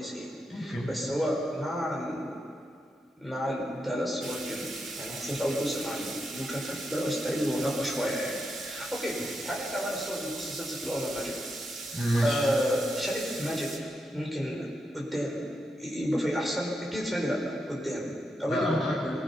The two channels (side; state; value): both; normal; correlation 0.84